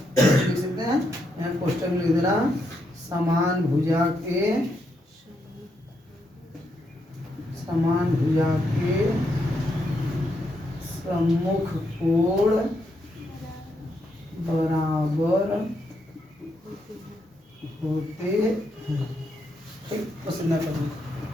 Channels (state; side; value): normal; both; correlation 0.79